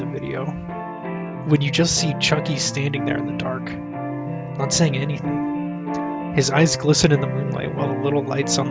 video, when you just see Chucky standing there in the dark, not saying anything. His eyes glisten in the moonlight while the little lights on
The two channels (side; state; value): both; identical; correlation 1.00